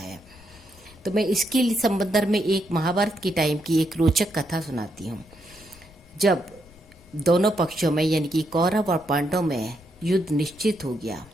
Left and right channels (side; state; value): left; noise; rumble, 25 dB below the sound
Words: तो मैं इसके संबंध में एक महाभारत के टाइम की एक रोचक कथा सुनाती हूँ। जब दोनों पक्षों में यानी कि कौरव और पांडव में युद्ध निश्चित हो गया,